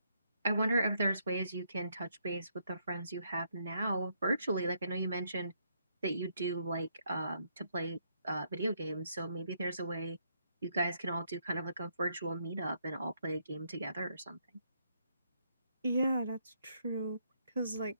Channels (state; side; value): inverted; both; correlation -0.74